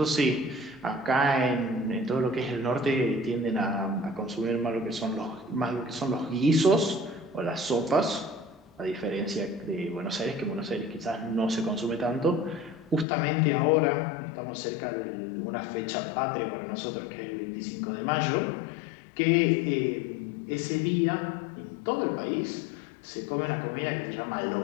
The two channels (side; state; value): right; drops out; at 13.1 s